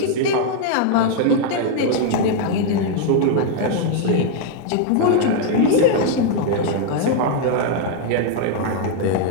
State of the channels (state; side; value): different; both; correlation 0.00